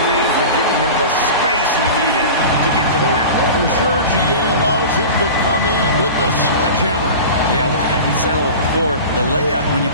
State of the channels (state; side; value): inverted; both; correlation -0.33